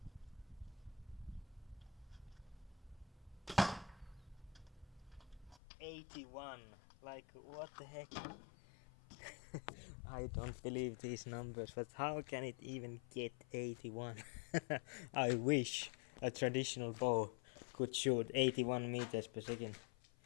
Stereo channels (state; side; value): drops out; right; at 5.6 s